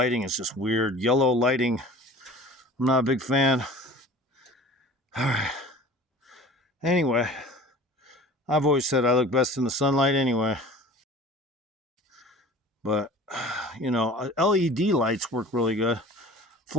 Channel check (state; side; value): normal; both; correlation 0.42